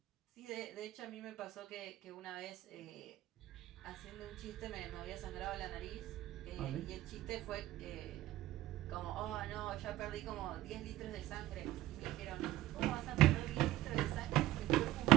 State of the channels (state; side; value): quieter; left; 15.4 dB